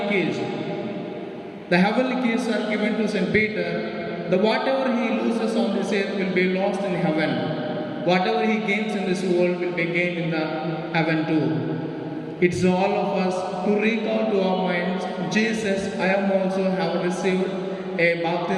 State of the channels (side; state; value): both; identical; correlation 1.00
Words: keys. The heavenly keys are given to St. Peter. Whatever he loses on this earth will be lost in heaven. Whatever he gains in this world will be gained in the heaven too. It's all of us to recall to our minds, Jesus, I am also have received a